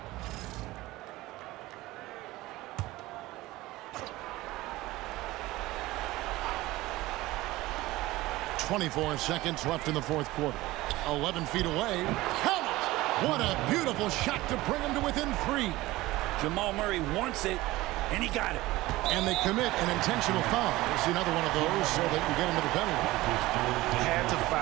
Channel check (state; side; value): quieter; left; 18.5 dB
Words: .24 seconds left in the 4th quarter. 11 feet away. Count it! What a beautiful shot to bring him to within 3. Jamal Murray wants it, and he got it. And they commit an intentional foul. See another one of those so they can get into the penalty. Had to